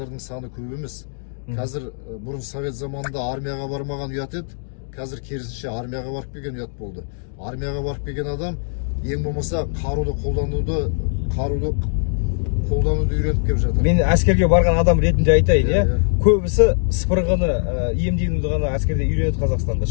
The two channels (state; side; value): silent; right; digital silence